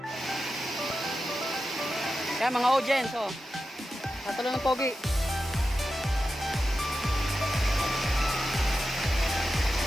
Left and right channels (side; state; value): both; normal; correlation 0.91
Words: Kaya mga audience, oh. Natalo ng pogi.